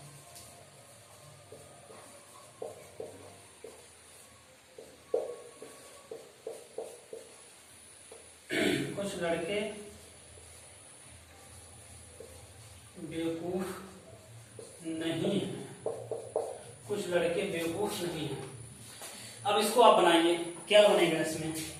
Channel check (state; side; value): identical; both; correlation 1.00